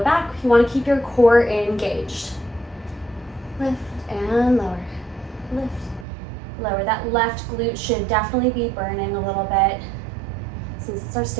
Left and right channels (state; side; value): drops out; left; at 6.1 s